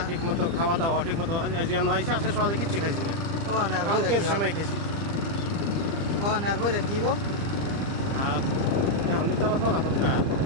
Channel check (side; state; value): left; late; 30 ms